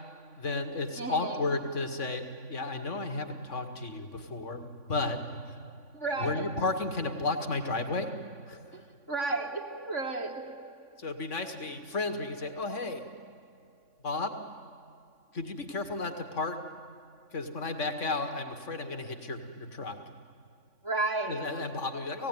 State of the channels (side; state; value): right; late; 3.5 ms